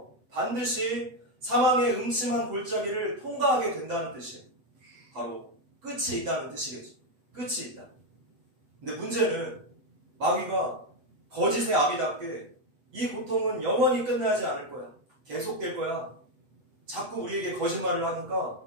반드시 사망의 음침한 골짜기를 통과하게 된다는 뜻이에요. 바로 끝이 있다는 뜻이겠죠. 끝이 있다. 근데 문제는 마귀가 거짓의 아비답게 이 고통은 영원히 끝나지 않을 거야. 계속될 거야. 자꾸 우리에게 거짓말을 하니까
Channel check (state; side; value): late; left; 8.1 ms